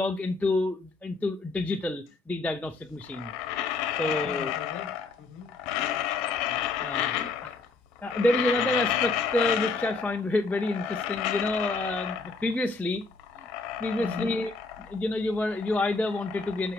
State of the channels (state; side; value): quieter; right; 3.7 dB